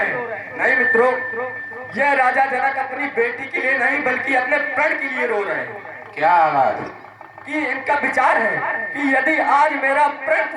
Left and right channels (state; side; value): identical; both; correlation 1.00